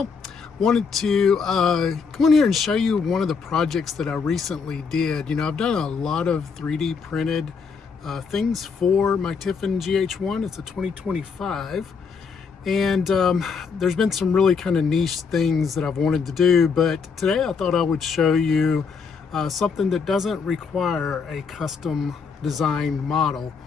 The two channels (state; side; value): quieter; right; 5.5 dB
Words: Wanted to come on here and show you one of the projects that I recently did. You know, I've done a lot of 3D printed things for my Tiffin GH1. It's a 2025. And there's been some really kind of niche things that I've wanted to do, but today I thought I would show you something that doesn't require a custom designed model.